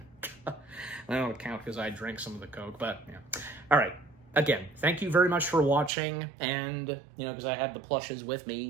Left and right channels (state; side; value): drops out; left; at 5.9 s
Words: I don't count because I drank some of the Coke, but yeah. All right. Again, thank you very much for watching, and, you know, because I had the plushes with